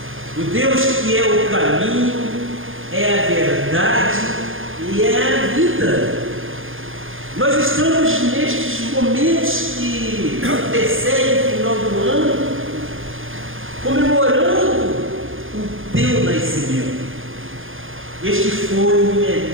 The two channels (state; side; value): late; left; 0.59 ms